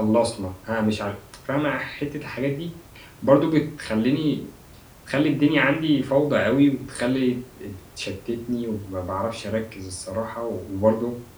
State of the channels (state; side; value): identical; both; correlation 1.00